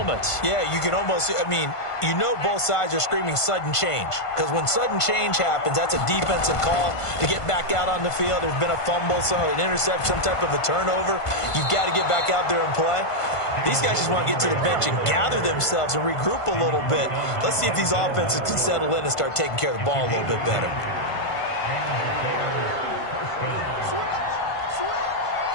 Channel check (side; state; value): right; late; 1.5 ms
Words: Yeah, you can almost, you know both sides are screaming sudden change. Because when sudden change happens, that's a defensive call to get back out on the field. There's been a fumble, so an interception, some type of a turnover. You've got to get back out there and play. These guys just want to get to the bench and gather themselves and regroup a little bit. Let's see if these offenses can settle in and start taking care of the ball a little bit better.